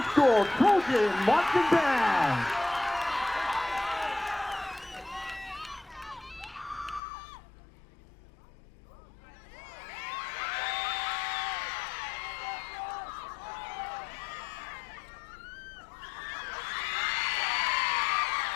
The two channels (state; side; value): drops out; right; at 7.0 s